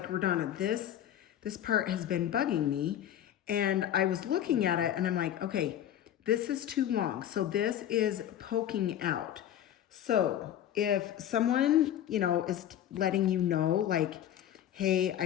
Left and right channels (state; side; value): quieter; right; 11.1 dB